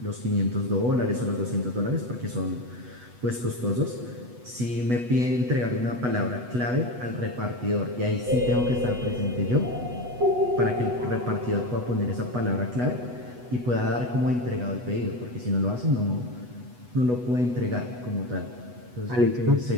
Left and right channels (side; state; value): left; late; 8.2 ms